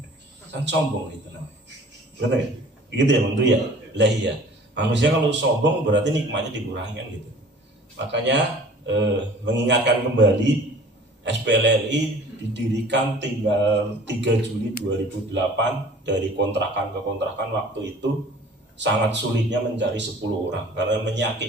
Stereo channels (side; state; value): both; normal; correlation 0.48